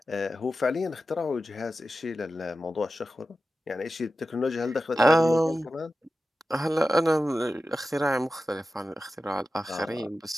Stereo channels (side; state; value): both; normal; correlation 0.93